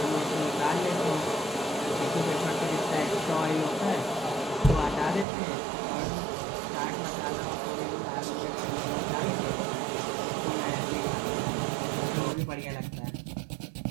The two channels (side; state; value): left; drops out; at 5.2 s